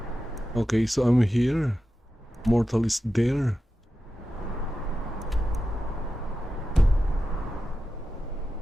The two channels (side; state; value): both; normal; correlation 0.92